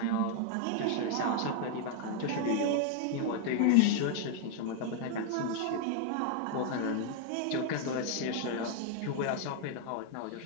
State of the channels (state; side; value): different; both; correlation 0.00